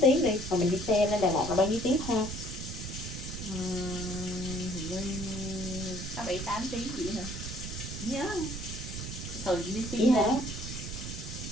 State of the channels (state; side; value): noise; right; rumble, 7 dB below the sound